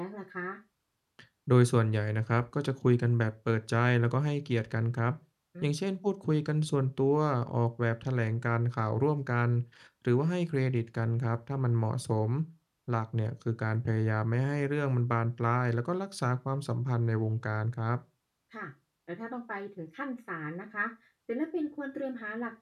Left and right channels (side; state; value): both; identical; correlation 1.00